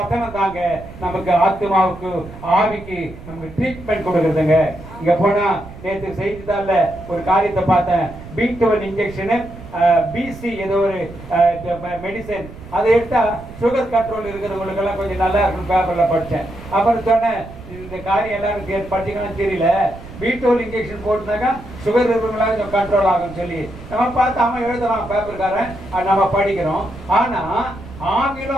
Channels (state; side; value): noise; right; rumble, 15 dB below the sound